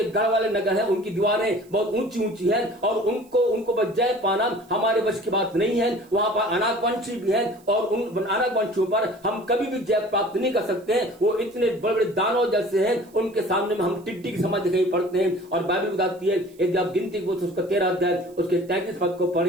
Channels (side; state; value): right; noise; hiss, 29 dB below the sound